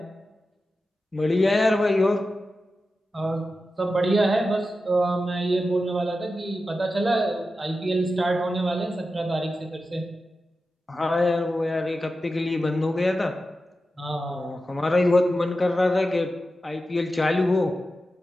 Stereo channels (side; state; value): both; normal; correlation 0.92